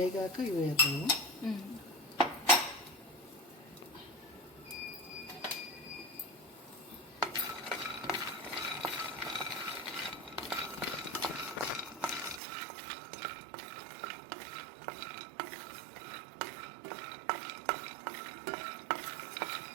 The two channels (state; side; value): drops out; left; at 12.4 s